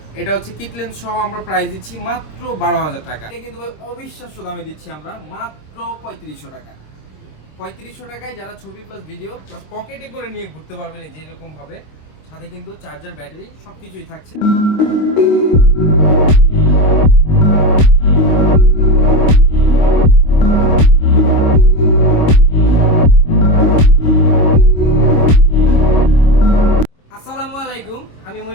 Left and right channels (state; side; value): late; right; 25 ms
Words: এটা হচ্ছে কিট লেন্স সহ আমরা প্রাইস দিচ্ছি মাত্র 12,000 টাকা। এটা কিন্তু ভাই অবিশ্বাস্য দামে দিচ্ছি আমরা মাত্র 3500 টাকা। 3500 টাকায় যারা ছবি প্লাস ভিডিও প্লাস পকেটে করে নিয়ে ঘুরতে পারবেন এই যে এরকম ভাবে, সাথে কিন্তু চার্জার, ব্যাটারি সবকিছুই থাকছে। আসসালামু আলাইকুম, আমি